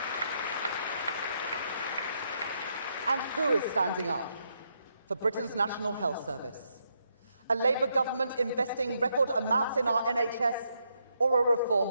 And who is standing up for Britain's National Health Service? A Labour government investing record amounts in our NHS, or a reform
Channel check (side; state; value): both; inverted; correlation -0.78